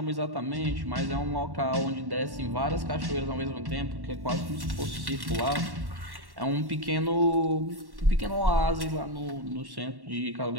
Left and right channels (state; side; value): late; left; 1.1 ms